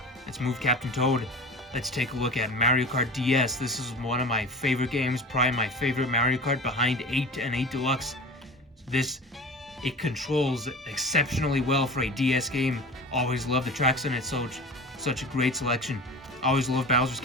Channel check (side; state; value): both; normal; correlation 0.36